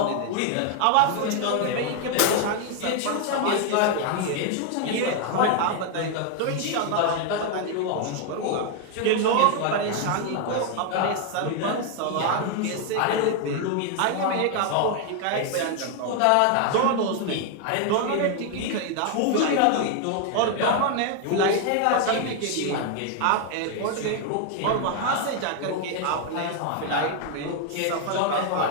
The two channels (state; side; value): different; both; correlation 0.00